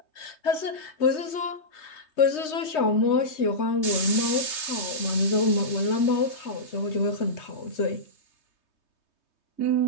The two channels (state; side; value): late; right; 3.2 ms